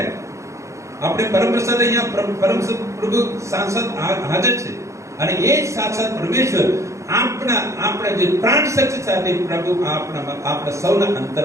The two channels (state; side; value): late; left; 0.15 ms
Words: આપણે પરમપ્રસાદ અહીંયા પ્રભુ સાંસદ હાજર છે અને એ સાક્ષાત પરમેશ્વર આપણા જે પ્રાણ શક્તિ સાથે પ્રભુ આપણા સૌના